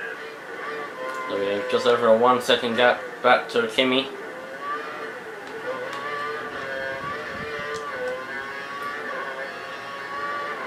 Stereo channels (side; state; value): both; identical; correlation 1.00